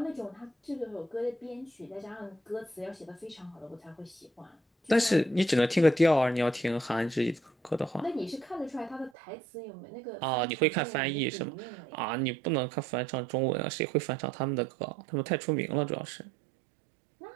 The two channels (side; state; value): left; drops out; at 9.1 s